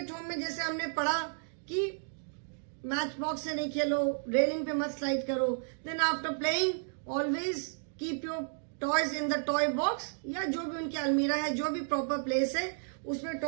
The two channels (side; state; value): left; silent; digital silence